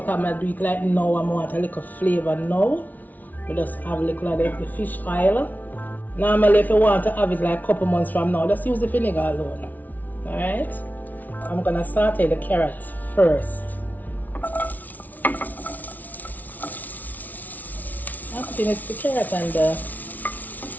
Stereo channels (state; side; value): late; right; 0.078 ms